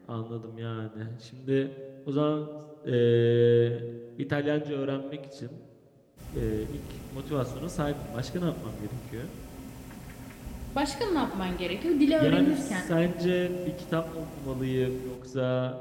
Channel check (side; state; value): both; identical; correlation 1.00